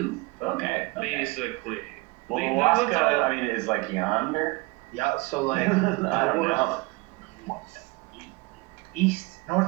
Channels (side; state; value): left; quieter; 24.5 dB